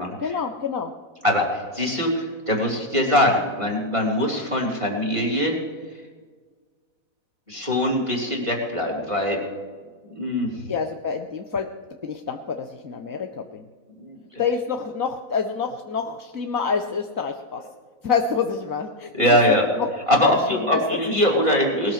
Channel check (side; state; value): left; late; 4.1 ms